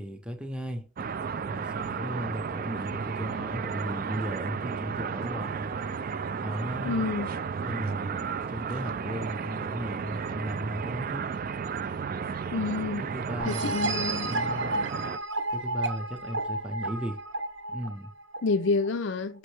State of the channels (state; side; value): normal; both; correlation 0.15